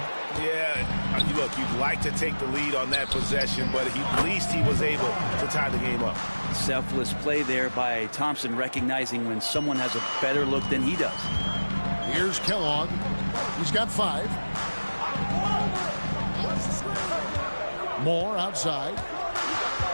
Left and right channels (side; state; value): both; inverted; correlation -1.00